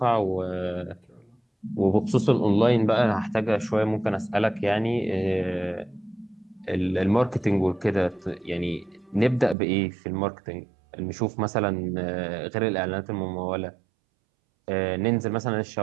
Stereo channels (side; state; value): left; drops out; at 9.6 s